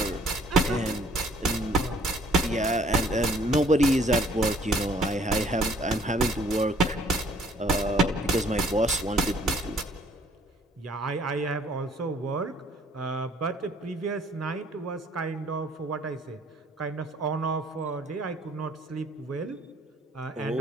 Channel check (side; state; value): both; normal; correlation 0.60